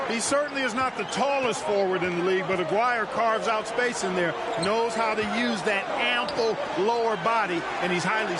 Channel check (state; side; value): identical; both; correlation 1.00